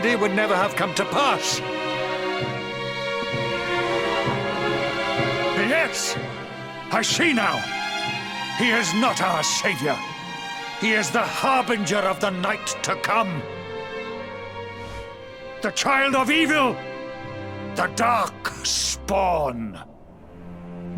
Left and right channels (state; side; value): identical; both; correlation 1.00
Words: would never have come to pass. Yes! I see now. He is not our savior. He is the harbinger of the night to come. The child of evil. The dark spawn.